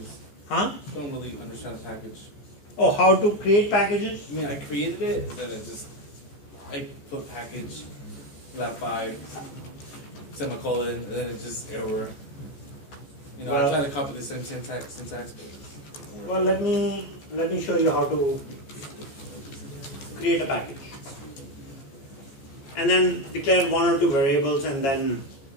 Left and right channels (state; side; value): late; right; 14 ms